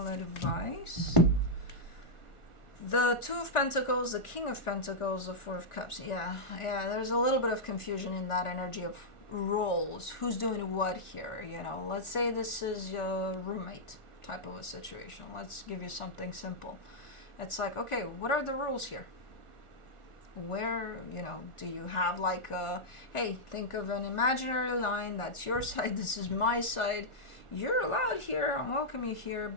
advice. The Two of Pentacles, the King of Pentacles, the Four of Cups. Yeah, there's a little bit of confusion in that energy of roles. Who's doing what here, you know? Let's say this is your roommate type of a situation. Let's give you something simple. It's like, okay, what are the rules here? Where, you know, do you have like a, hey, think of an imaginary line, that's your side, this is my side. You're allowed here, I welcome you here,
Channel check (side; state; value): right; late; 1.4 ms